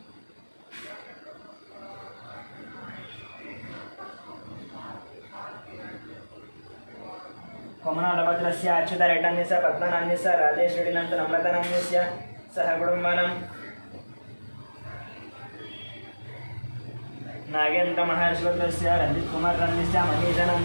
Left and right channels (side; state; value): both; inverted; correlation -1.00